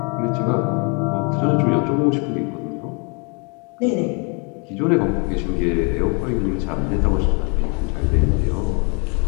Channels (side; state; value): right; quieter; 34.0 dB